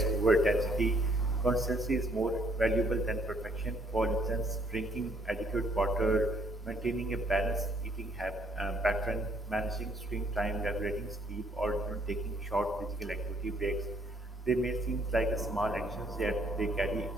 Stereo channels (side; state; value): both; normal; correlation 0.66